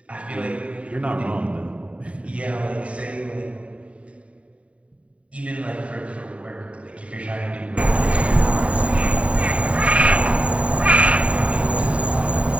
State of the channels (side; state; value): left; late; 0.064 ms